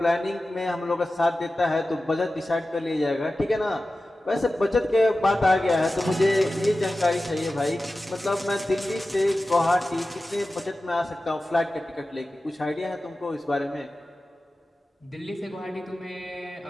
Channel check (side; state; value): both; normal; correlation 0.95